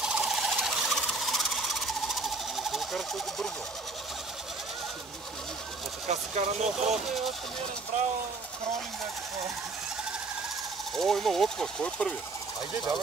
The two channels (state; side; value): quieter; left; 3.5 dB